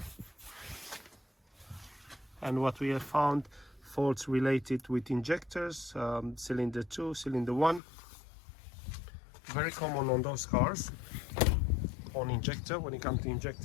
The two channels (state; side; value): drops out; right; at 7.8 s